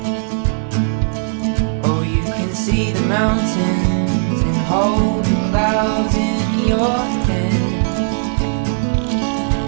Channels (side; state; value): left; silent; digital silence